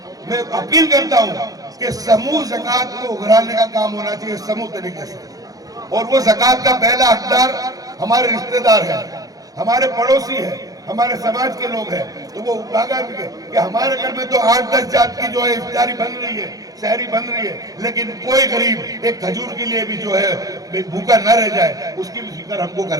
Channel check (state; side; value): late; left; 0.17 ms